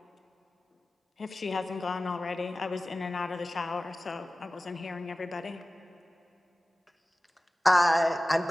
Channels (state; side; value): normal; both; correlation 0.96